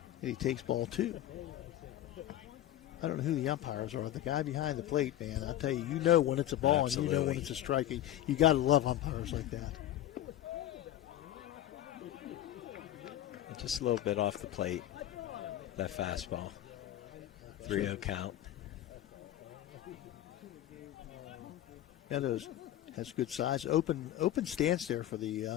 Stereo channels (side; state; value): right; quieter; 12.8 dB